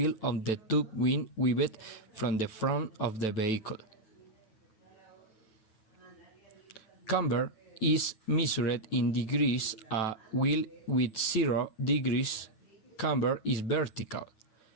of the tube when weaved from the front of the vehicle. Camber is measured in degrees. A wheel with 0 degrees camber is vertical.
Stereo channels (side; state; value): right; late; 9.3 ms